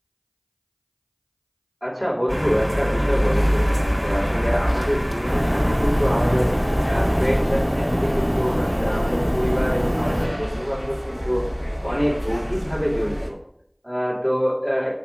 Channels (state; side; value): identical; both; correlation 1.00